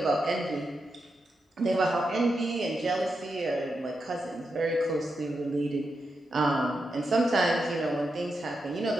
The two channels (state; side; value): normal; both; correlation 0.86